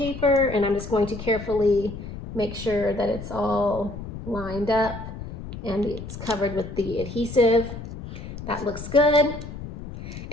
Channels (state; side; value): noise; left; rumble, 10 dB below the sound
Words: and I'm just going to carefully make sure that it's all lined up and it's covered with the adhesive. That looks good.